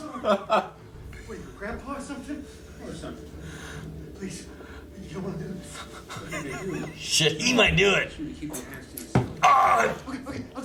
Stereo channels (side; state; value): both; identical; correlation 1.00